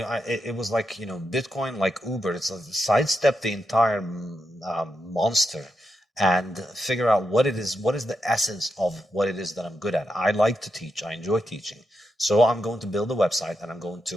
it was like, Bitcoin, like Uber, it's a sidestep the entire monster and figure out what is the essence of what it is that I'm good at. I like to teach. I enjoy teaching. So I'm going to build a website and I'm going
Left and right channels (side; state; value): both; normal; correlation 0.85